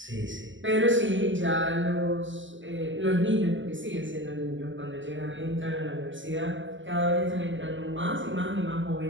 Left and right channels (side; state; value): left; late; 0.55 ms